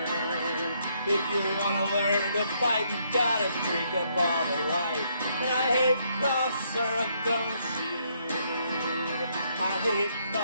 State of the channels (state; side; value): inverted; both; correlation -0.72